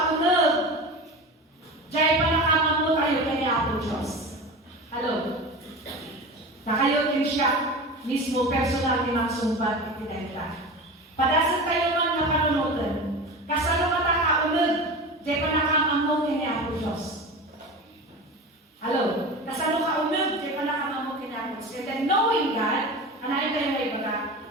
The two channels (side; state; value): both; normal; correlation 0.30